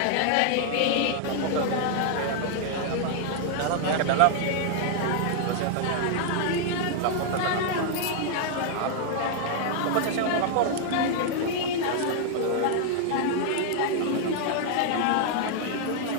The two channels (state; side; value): different; both; correlation 0.00